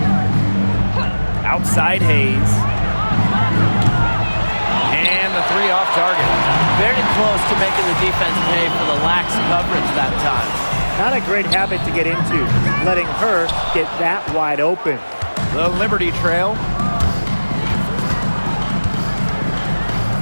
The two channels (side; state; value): both; inverted; correlation -1.00